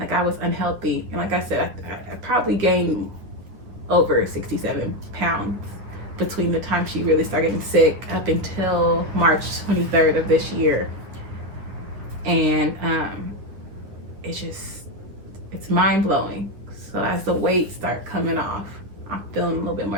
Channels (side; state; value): left; late; 9.8 ms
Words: I was unhealthy. And like I said, I probably gained over 67 pounds between the time she really started getting sick up until March 23rd of this year. And it's mind-blowing. So as the weight start coming off, I'm feeling a little bit